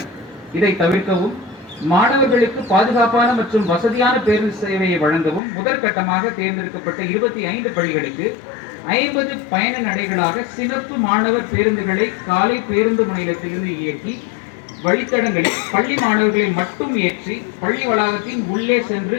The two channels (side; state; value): right; drops out; at 5.4 s